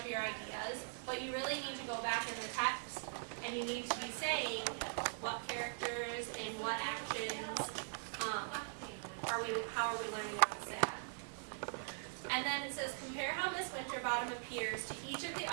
your ideas, but you really need to go back in the text and you need to be saying what characters and what actions how are we learning about Sale. And then it says, compare how Miss Winterbottom appears to each of the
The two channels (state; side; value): silent; left; 50 dB below the other